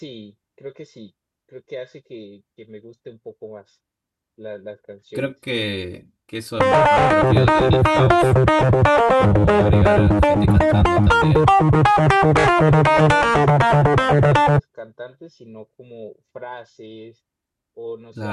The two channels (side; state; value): both; identical; correlation 1.00